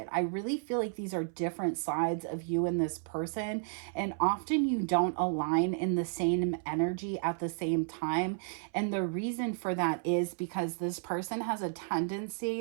I really feel like these are different sides of you and this person, and often you don't align in the same energy at the same time. And the reason for that is because this person has a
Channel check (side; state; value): left; silent; 56 dB below the other